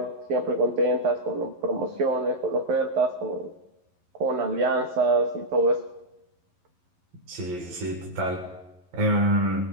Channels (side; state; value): left; late; 11 ms